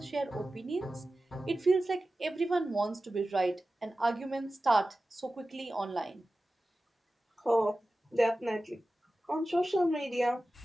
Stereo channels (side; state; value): both; normal; correlation 0.95